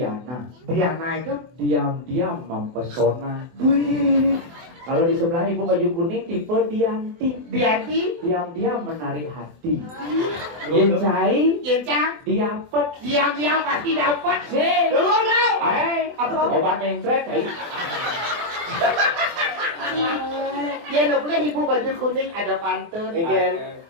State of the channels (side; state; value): left; late; 24 ms